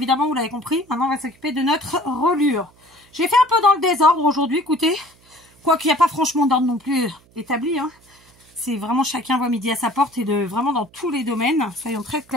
vous l'avez compris. Maintenant, on va s'occuper de notre reliure. J'ai fait un peu dans le désordre aujourd'hui, écoutez. Quoiqu'il n'y a pas franchement d'ordre non plus établi. Hein. c'est vraiment chacun voit midi à sa porte et vraiment dans tous les domaines, soyons très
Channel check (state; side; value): noise; right; hum, 30 dB below the sound